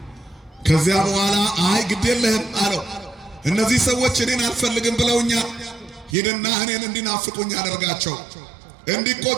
ከዚያ በኋላ አይ ግድ የለህም አለው። እነዚህ ሰዎች እኔን አልፈልግም ብለውኛል። ሂድና እኔን እንዲናፍቁኝ አደርጋቸው፣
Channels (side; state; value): left; drops out; at 6.2 s